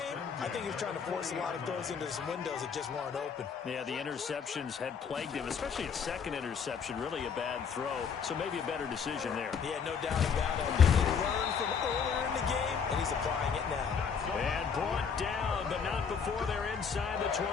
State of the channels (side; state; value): right; quieter; 6.4 dB